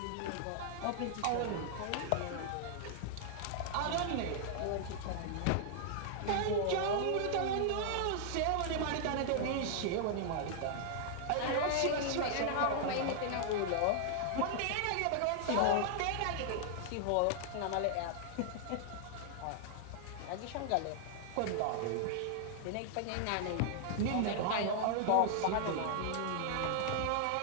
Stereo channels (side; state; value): both; different; correlation -0.01